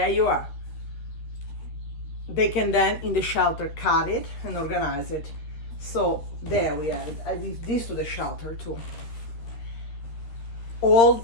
you are. They can then in the shelter cut it and organize it. So there we have it. I give this to the shelter too.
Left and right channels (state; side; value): late; right; 13 ms